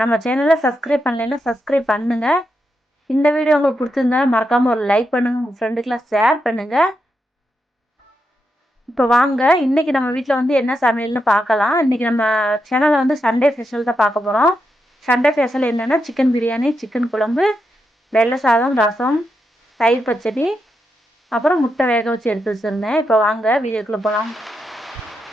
நம்ம சேனலை சப்ஸ்கிரைப் பண்ணலைன்னா சப்ஸ்கிரைப் பண்ணுங்கள். இந்த வீடியோ உங்களுக்கு பிடிச்சிருந்தா மறக்காமல் ஒரு லைக் பண்ணுங்கள், உங்கள் ஃப்ரெண்டுக்கெலாம் ஷேர் பண்ணுங்கள். இப்போ வாங்க, இன்றைக்கி நம்ம வீட்டில் வந்து என்ன சமையல்னு பார்க்கலாம். இன்றைக்கி நம்ம சேனலில் வந்து சண்டே ஸ்பெஷல் தான் பார்க்க போகிறோம். சண்டே ஸ்பெஷல் என்னென்னா சிக்கன் பிரியாணி, சிக்கன் குழம்பு, வெள்ளை சாதம், ரசம், தயிர் பச்சடி, அப்புறம் முட்டை வேக வச்சு எடுத்து வச்சுருந்தேன். இப்போ வாங்க வீடியோக்குள்ளே போகலாம்.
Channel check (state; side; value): normal; both; correlation 0.84